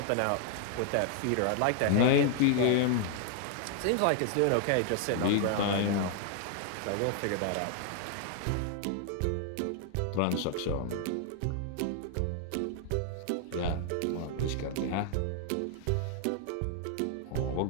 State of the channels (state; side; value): different; both; correlation 0.00